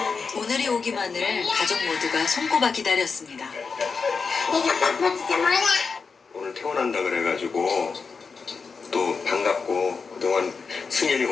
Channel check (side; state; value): right; quieter; 5.0 dB